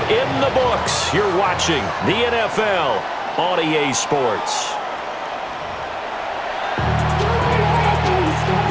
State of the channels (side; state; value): both; identical; correlation 1.00